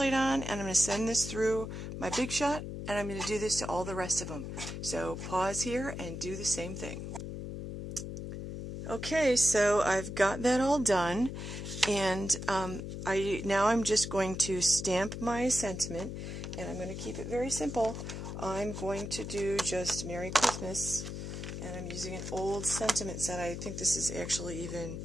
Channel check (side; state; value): left; noise; hum, 7 dB below the sound